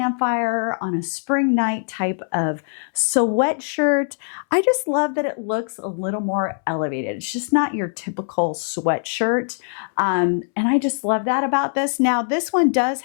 on a spring night type of sweatshirt. I just love that it looks a little more elevated. It's just not your typical sweatshirt. And I just love that about this. Now, this one does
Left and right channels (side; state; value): right; silent; 64 dB below the other